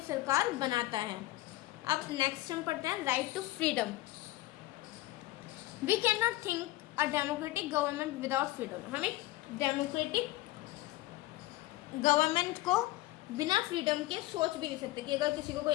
सरकार बनाता है। अब नेक्स्ट हम पढ़ते हैं, right to freedom. We can not think a democratic government without freedom. हम एक डेमोक्रेटिक गवर्नमेंट को बिना फ्रीडम के सोच भी नहीं सकते कि अगर किसी को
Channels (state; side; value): quieter; right; 17.7 dB